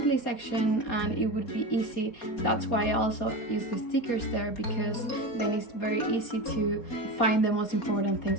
section and it would be easy. That's why I also use the stickers there, because then it's very easy to find the most important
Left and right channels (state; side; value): late; right; 4.3 ms